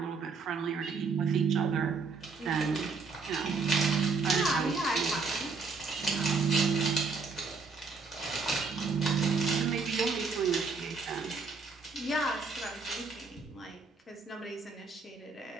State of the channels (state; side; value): quieter; left; 4.6 dB